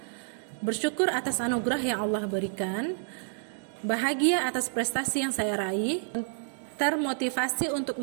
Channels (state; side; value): silent; left; digital silence